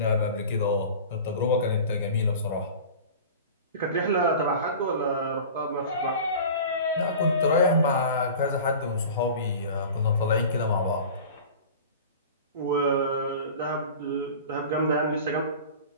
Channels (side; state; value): both; inverted; correlation -0.38